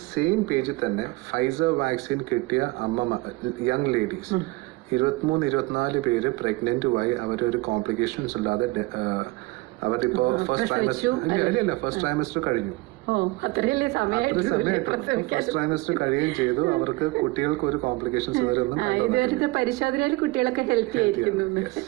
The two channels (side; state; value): left; quieter; 22.7 dB